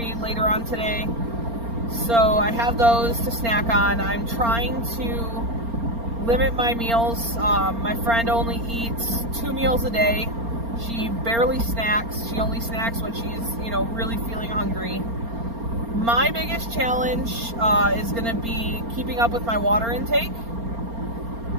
later on today. So I have those to snack on. I'm trying to limit my meals. My friend only eats 2 meals a day. She barely snacks. She only snacks when she's, really feeling hungry. My biggest challenge is going to be keeping up with my water intake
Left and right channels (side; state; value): left; late; 4.3 ms